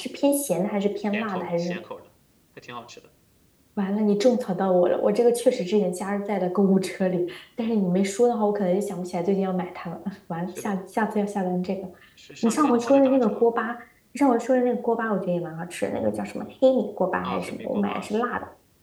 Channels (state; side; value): identical; both; correlation 1.00